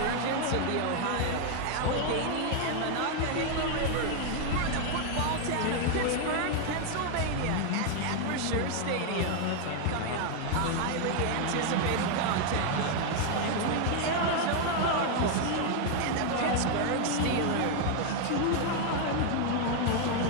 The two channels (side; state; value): both; different; correlation 0.01